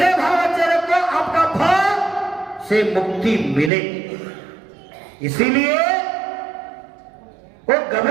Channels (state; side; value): drops out; left; at 3.7 s